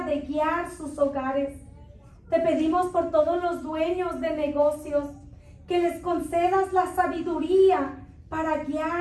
de guiar sus hogares. Te pedimos por todos los dueños de negocios, que les concedas la sabiduría para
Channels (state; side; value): identical; both; correlation 1.00